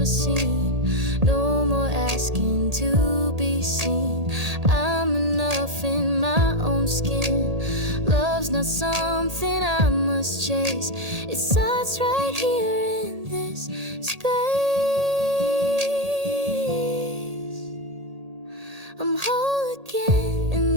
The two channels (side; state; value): left; late; 1.8 ms